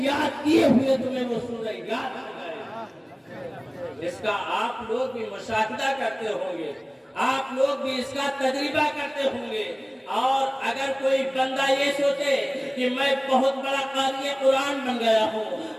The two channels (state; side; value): identical; both; correlation 1.00